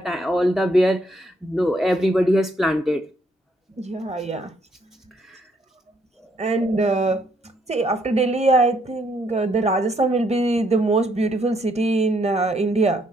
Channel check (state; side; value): normal; both; correlation 0.71